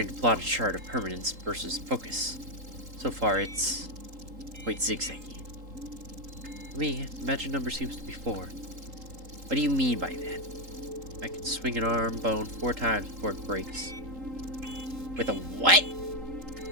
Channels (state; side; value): late; left; 3.8 ms